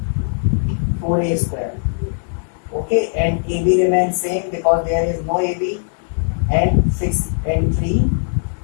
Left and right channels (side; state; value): right; silent; digital silence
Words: 4A square. Okay, and AB remains same because there is no AB, and 6 and 3